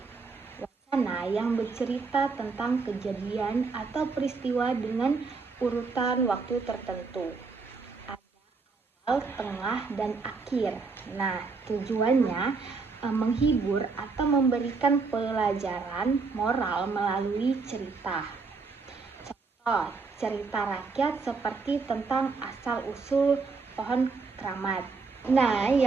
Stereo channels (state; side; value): quieter; left; 4.5 dB